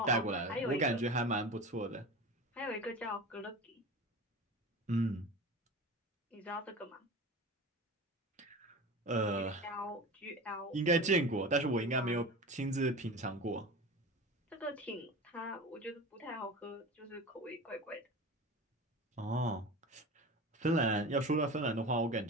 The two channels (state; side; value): normal; both; correlation 0.32